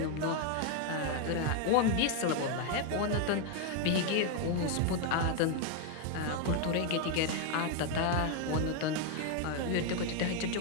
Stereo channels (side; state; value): both; different; correlation 0.01